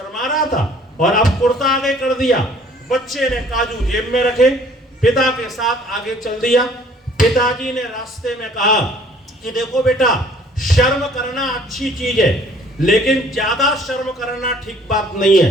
रहा था और अब कुर्ता आगे कर दिया। बच्चे ने काजू जेब में रखे, पिता के साथ आगे चल दिया। पिताजी ने रास्ते में कहा कि देखो बेटा, शर्म करना अच्छी चीज है, लेकिन ज्यादा शर्म करना ठीक बात नहीं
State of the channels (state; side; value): normal; both; correlation 0.56